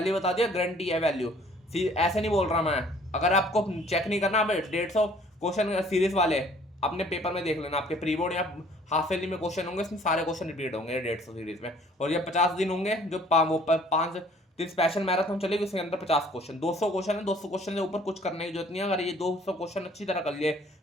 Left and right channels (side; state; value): both; normal; correlation 0.56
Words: बता दिया गारंटी है वैल्यू, ऐसे नहीं बोल रहा मैं। अगर आपको चेक नहीं करना, 150 क्वेश्चन सीरीज वाले अपने पेपर में देख लेना, आपके प्री बोर्ड या हाफ ईयरली में क्वेश्चन होंगे, इसमें सारे क्वेश्चन रिपीट होंगे 150 सीरीज में। और ये 50 दिन होंगे जो 5 दिन स्पेशल मैराथन चलेगी, उसके अंदर 50 क्वेश्चन, 200 क्वेश्चन है, 200 क्वेश्चन से ऊपर कुछ करने की जरूरत नहीं है। अगर ये 200 क्वेश्चन अच्छी तरह कर लिए